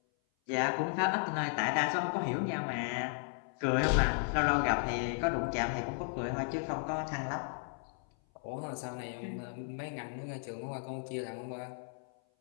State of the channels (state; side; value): silent; right; 55 dB below the other